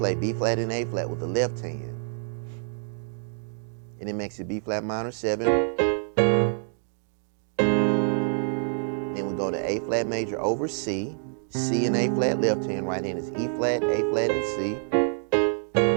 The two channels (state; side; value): silent; left; digital silence